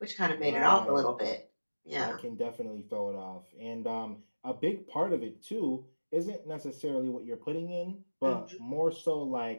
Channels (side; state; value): both; inverted; correlation -1.00